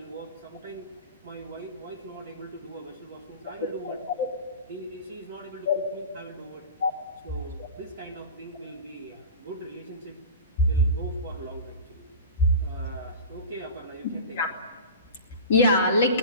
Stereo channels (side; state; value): both; inverted; correlation -0.32